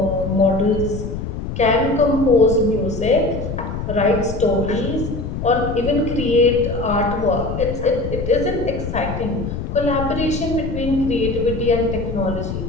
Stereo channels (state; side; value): noise; left; rumble, 6 dB below the sound